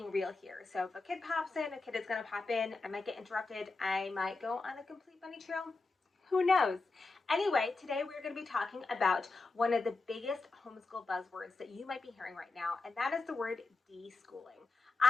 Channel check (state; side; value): quieter; right; 3.6 dB